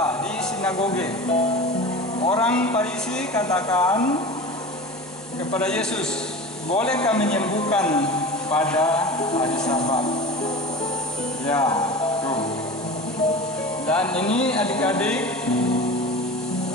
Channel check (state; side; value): normal; both; correlation 0.33